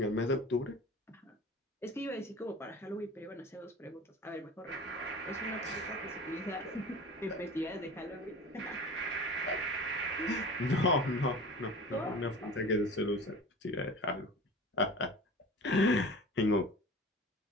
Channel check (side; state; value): both; normal; correlation 0.37